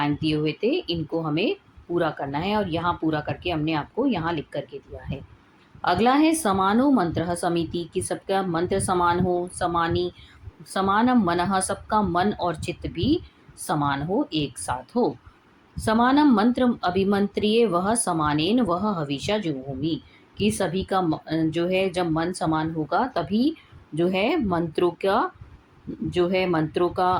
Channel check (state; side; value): identical; both; correlation 1.00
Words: दिए हुए थे इनको हमें पूरा करना है, और यहाँ पूरा करके हमने आपको यहाँ लिख करके दिया है। अगला है समानो मंत्र समिति, कि सबका मंत्र समान हो, समानी समानम मनः, सबका मन और चित्त भी समान हो, एक साथ हो। समानम मंत्र अभिमंत्रिये वह समानेन वह हविषा जुहोमि, कि सभी का जो है जब मन समान होगा तभी जो है मंत्रों का, जो है मंत्रों